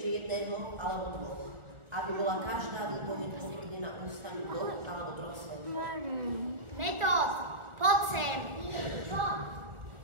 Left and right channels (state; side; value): late; left; 1.4 ms